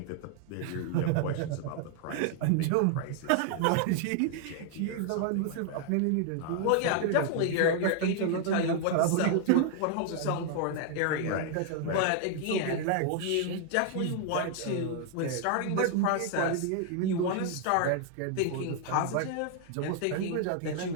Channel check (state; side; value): different; both; correlation 0.00